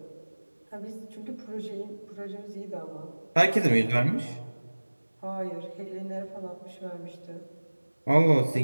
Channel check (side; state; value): both; inverted; correlation -1.00